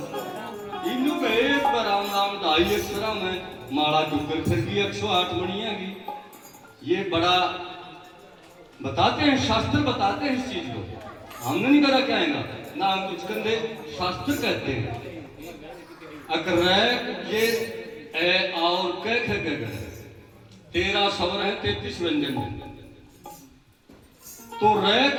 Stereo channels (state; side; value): identical; both; correlation 1.00